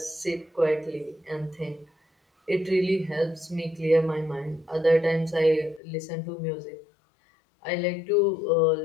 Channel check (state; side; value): drops out; right; at 5.8 s